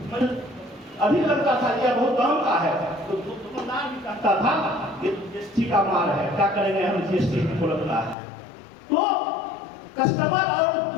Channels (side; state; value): right; drops out; at 8.2 s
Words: अधिक लगता था, यह बहुत दाम का है, तो दुकानदार भी कहता था ये जीएसटी का माल है, क्या करेंगे हम, जीएसटी को लगता है। तो कस्टमर और